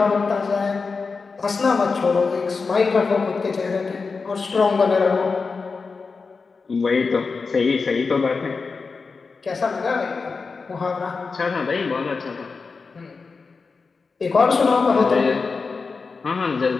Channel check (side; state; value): right; quieter; 4.6 dB